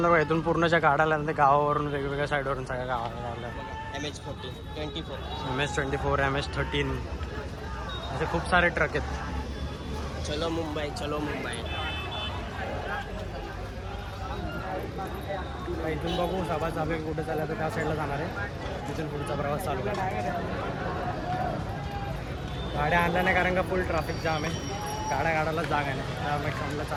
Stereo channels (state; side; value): identical; both; correlation 1.00